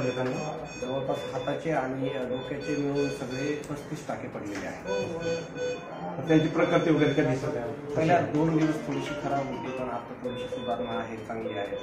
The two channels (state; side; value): identical; both; correlation 1.00